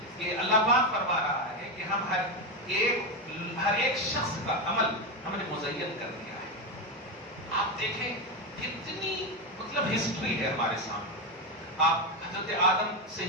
کہ اللہ پاک فرما رہا ہے کہ ہم ہر ایک شخص کا عمل ہم نے مزین کر دیا ہے. آپ دیکھیں کتنی مطلب ہسٹری ہے ہمارے سامنے. آپ حضرت آدم سے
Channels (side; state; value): both; normal; correlation 0.10